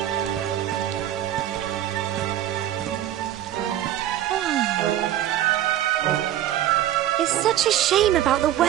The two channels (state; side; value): quieter; left; 12.3 dB